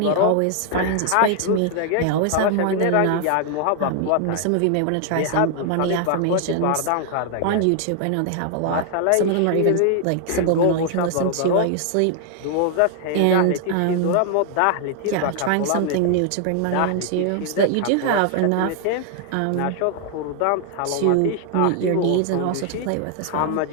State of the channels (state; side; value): different; both; correlation 0.00